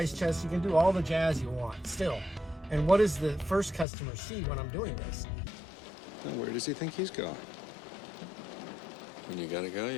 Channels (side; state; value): right; drops out; at 3.9 s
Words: chests, you can do all the jazz you want still. And what does the first customer see when I'm doing this? And where does he think he's going? When you gotta go,